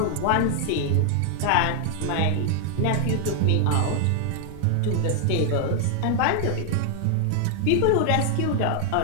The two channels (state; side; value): different; both; correlation 0.00